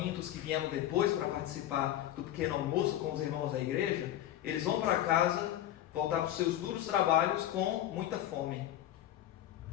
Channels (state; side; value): quieter; right; 12.6 dB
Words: que vieram depois para participar do pequeno almoço com os irmãos da igreja, eles vão para casa, voltar para os seus duros trabalhos com muita fome.